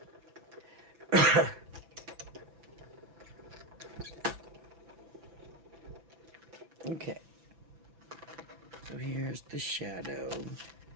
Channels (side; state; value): left; late; 6.0 ms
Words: Okay, so here's the shadow.